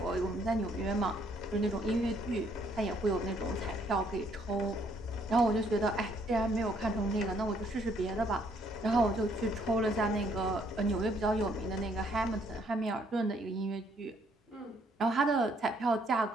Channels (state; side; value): normal; both; correlation 0.68